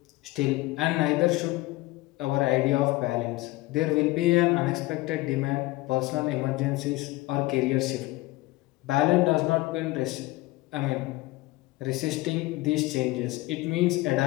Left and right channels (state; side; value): quieter; right; 20.0 dB